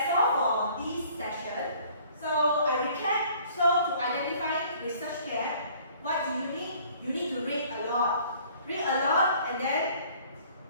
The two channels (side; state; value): both; inverted; correlation -0.55